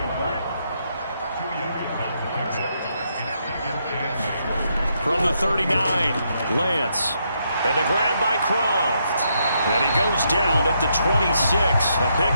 From the 39, Lance. And the grab by Croft. And he goes down at the 26. A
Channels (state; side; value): inverted; both; correlation -0.77